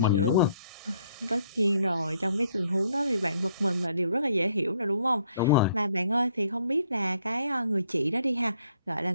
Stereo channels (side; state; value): both; inverted; correlation -0.68